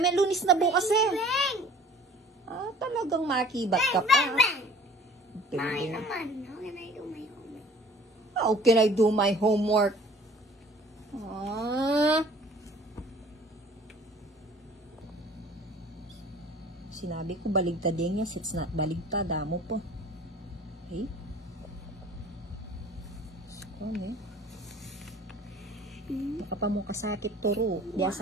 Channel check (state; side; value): normal; both; correlation 0.49